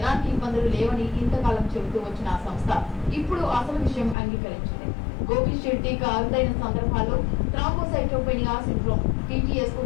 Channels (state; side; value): drops out; right; at 4.2 s